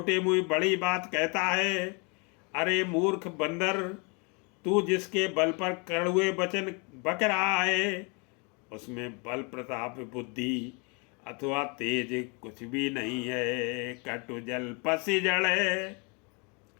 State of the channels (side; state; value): right; quieter; 32.5 dB